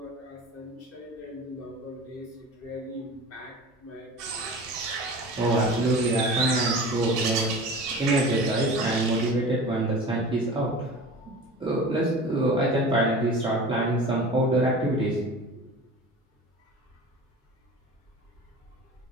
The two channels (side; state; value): both; normal; correlation 0.37